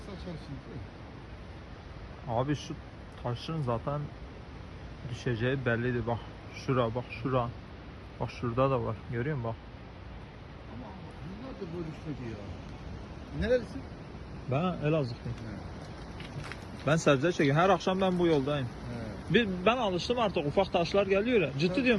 şimdi. Abi şu taşın zaten düşeceği bellidir. Bak şura, bak şura. Bak şurada da var. Görüyor musun bak. Ama yıllardır böyle düşmedi ya. Nerelisin? Ben Elazığlıyım. Ben sebze çekiyorum. Her akşam ben bu yoldayım. Ben alıştım artık, ufak taşlar geliyor ya. Ciddi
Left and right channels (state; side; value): identical; both; correlation 1.00